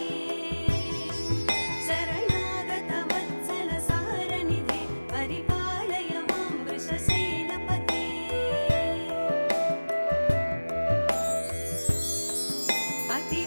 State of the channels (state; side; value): inverted; both; correlation -1.00